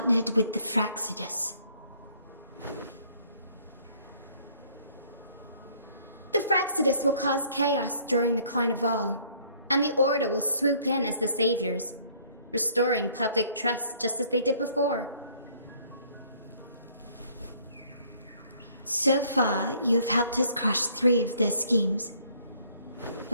with the Fraxidus. The Fraxidus will cause chaos during the Carnival, and the Order will swoop in as the saviors, restoring public trust just as they did before. So far, you've helped us crush 3 of their schemes,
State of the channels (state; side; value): inverted; both; correlation -0.60